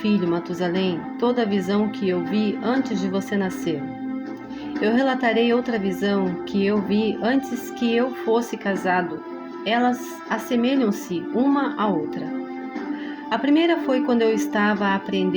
Matusalém, toda a visão que eu vi antes de você nascer. Eu relatarei outra visão que eu vi antes que eu fosse casado. Elas assemelham-se uma à outra. A primeira foi quando eu estava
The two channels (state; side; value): identical; both; correlation 1.00